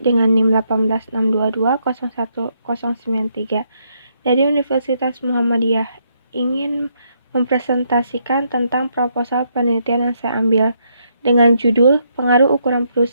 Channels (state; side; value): inverted; both; correlation -0.75